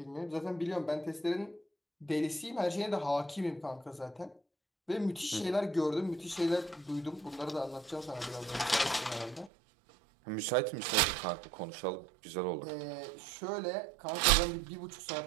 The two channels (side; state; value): left; drops out; at 9.5 s